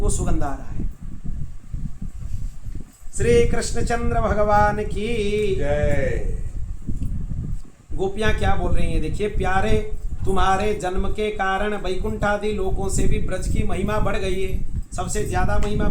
सुगंध आ रहा है। श्री कृष्णचंद्र भगवान की जय। गोपियां क्या बोल रही हैं? देखिए, प्यारे तुम्हारे जन्म के कारण वैकुंठ आदि लोकों से भी ब्रज की महिमा बढ़ गई है। सबसे ज्यादा महिमा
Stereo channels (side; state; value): both; identical; correlation 1.00